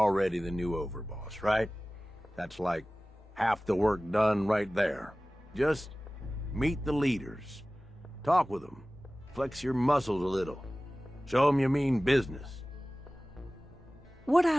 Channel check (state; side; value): normal; both; correlation 0.98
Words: the new overboss, right? That's like half the work done right there. Just meet the leaders. Talk with them. Flex your muscles a little. Show them you mean business. What